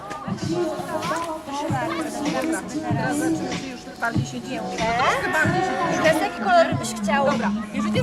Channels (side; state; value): both; identical; correlation 1.00